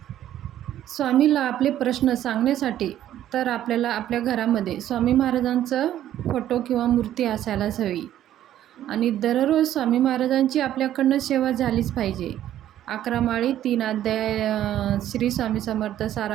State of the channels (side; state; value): left; quieter; 12.0 dB